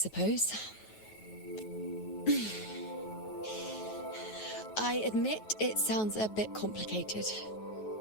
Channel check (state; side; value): late; right; 9.3 ms